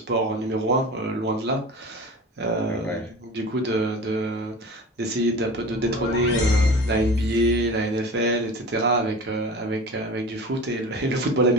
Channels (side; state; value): both; normal; correlation 0.36